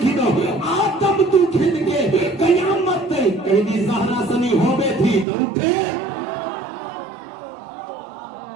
کھدو آدم تو کھد کے قیامت تے کہیں دی زہرا سنی ہوے تھی تو اٹھے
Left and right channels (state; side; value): drops out; left; at 5.2 s